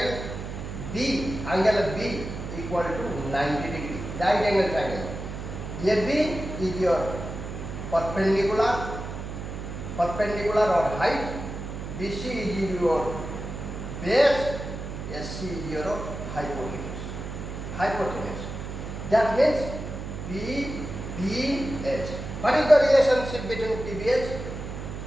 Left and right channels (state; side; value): noise; right; hum, 7 dB below the sound